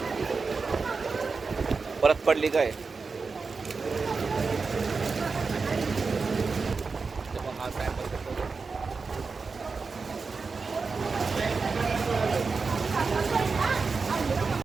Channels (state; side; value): quieter; left; 4.6 dB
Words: परत पडली काय? हा सॅम्पल